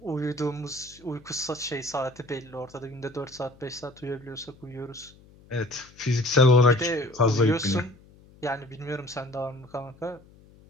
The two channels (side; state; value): left; noise; hum, 25 dB below the sound